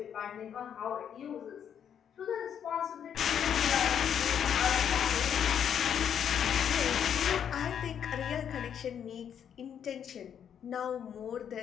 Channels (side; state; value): right; quieter; 8.6 dB